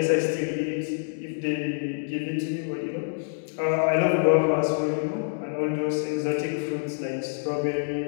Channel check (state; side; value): silent; right; digital silence